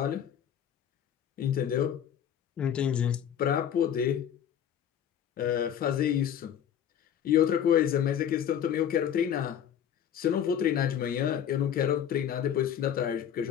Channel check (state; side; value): quieter; right; 9.4 dB